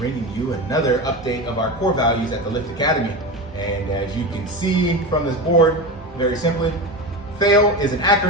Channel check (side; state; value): both; normal; correlation 0.23